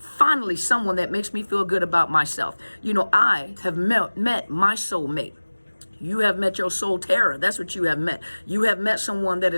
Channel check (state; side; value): inverted; both; correlation -1.00